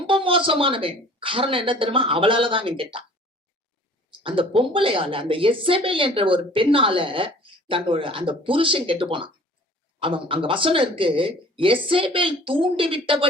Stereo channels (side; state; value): both; normal; correlation 0.49